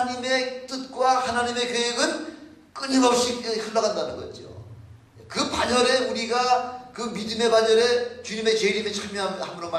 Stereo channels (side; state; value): both; identical; correlation 1.00